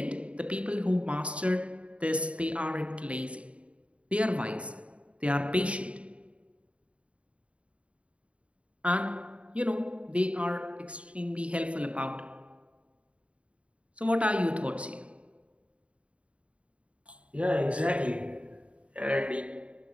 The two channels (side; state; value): left; late; 0.062 ms